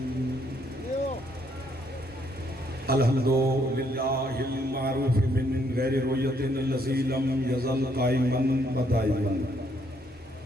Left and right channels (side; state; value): both; normal; correlation 0.71